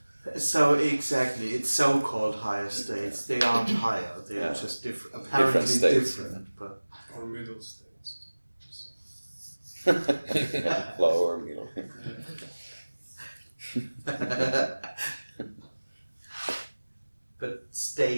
So exactly, it's so-called higher states. They aren't higher, they are just different. Apparently different, but or middle states. Lower, middle. But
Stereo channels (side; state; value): both; inverted; correlation -1.00